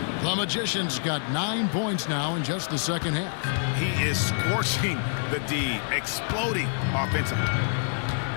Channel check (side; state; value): right; silent; 60 dB below the other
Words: The Magician's got 9 points now in just the second half. He is scorching the D, exploding offensively.